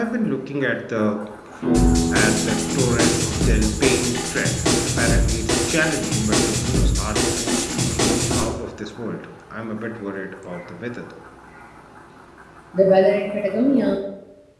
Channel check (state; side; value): identical; both; correlation 1.00